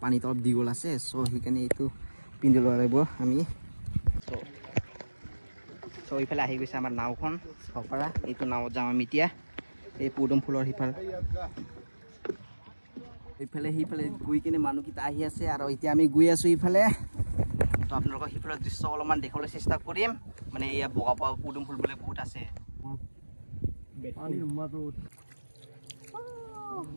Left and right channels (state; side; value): inverted; both; correlation -1.00